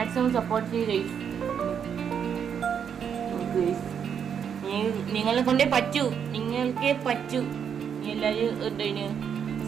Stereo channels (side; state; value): left; quieter; 7.7 dB